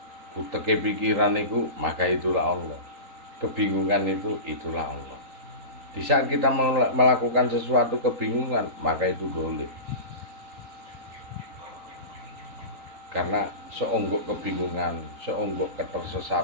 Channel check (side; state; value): left; late; 3.8 ms